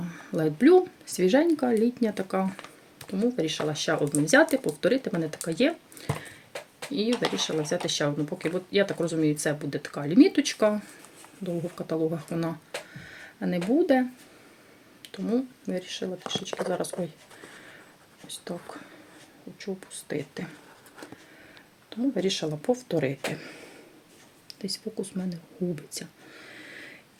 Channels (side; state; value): both; identical; correlation 1.00